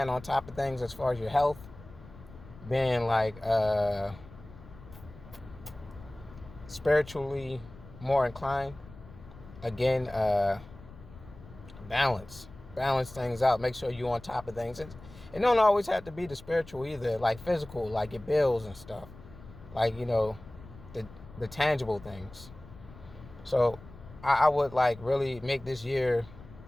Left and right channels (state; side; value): noise; left; rumble, 18 dB below the sound